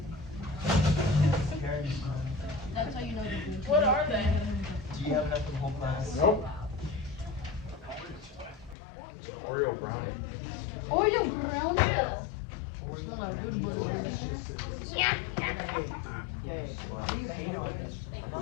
That's how you know the What are they? Do you have enough for the whole class? Nope. Oreo brownie. Oreo brownie. Smell like good butter. Yeah. Why do you hate on this? I'm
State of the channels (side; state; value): right; drops out; at 8.8 s